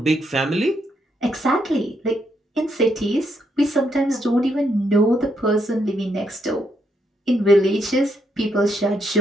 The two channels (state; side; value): normal; both; correlation 0.77